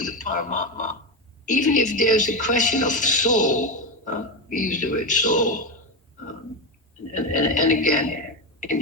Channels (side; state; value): both; normal; correlation 0.13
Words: the Paramatma. Even if there's a question of soul, we use the word soul, um, and again, in